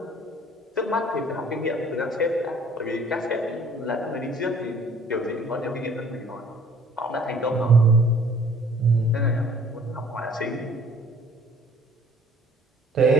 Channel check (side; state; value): both; normal; correlation 0.55